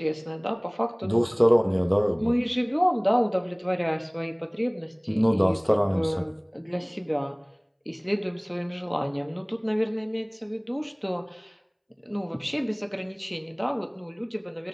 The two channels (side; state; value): both; identical; correlation 1.00